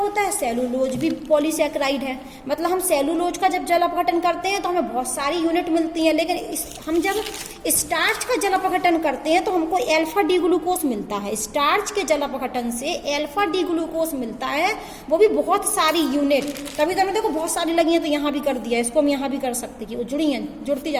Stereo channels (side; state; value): both; identical; correlation 1.00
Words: है, सेलुलोज भी पॉलीसैकेराइड है। मतलब हम सेलुलोज का जब जल अपघटन करते हैं तो हमें बहुत सारी यूनिट मिलती हैं, लेकिन हम जब स्टार्च का जल अपघटन करते हैं तो हमको अल्फा डी ग्लूकोज मिलता है। स्टार्च के जल अपघटन से अल्फा डी ग्लूकोज मिलता है, वो भी बहुत सारी यूनिट। तभी तो देखो बहुत सारी लगी हैं, तो यहाँ भी कर दिया, इसको हम यहाँ भी कर सकते कि वो जुड़ी हैं, जुड़ती